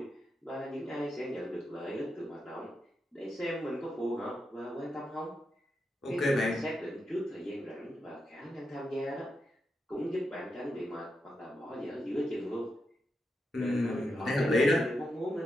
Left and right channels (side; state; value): both; normal; correlation 0.86